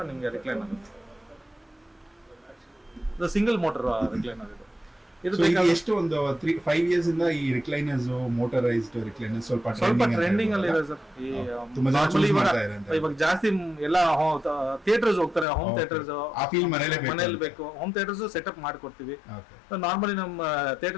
ನಿಮ್ಗೆ ರಿಕ್ಲೈನರ್ ಇದು ಸಿಂಗಲ್ ಮೋಟರ್ ರಿಕ್ಲೈನರ್. ಇದು ಎಷ್ಟು ಒಂದು 5 ಇಯರ್ಸ್ ಇಂದ ಈ ರಿಕ್ಲೈನರ್ಸ್, ಮೋಟರೈಸ್ಡ್ ರಿಕ್ಲೈನರ್ಸ್ ಸ್ವಲ್ಪ ಟ್ರೆಂಡಿಂಗ್ ಅಲ್ಲಿ ಇದೆ ಸರ್. ಇವಾಗ ಜಾಸ್ತಿ ಎಲ್ಲ ಥಿಯೇಟರ್ಸ್ ಹೋಗ್ತಾರೆ, ಹೋಮ್ ಥಿಯೇಟರ್ಸ್. ಮನೇಲಿ ಬೇಕು, ಹೋಮ್ ಥಿಯೇಟರ್ಸ್ ಸೆಟಪ್ ಮಾಡ್ಕೊಡ್ತೀವಿ. ನಾರ್ಮಲಿ ನಮ್ಮ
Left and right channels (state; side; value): drops out; right; at 15.5 s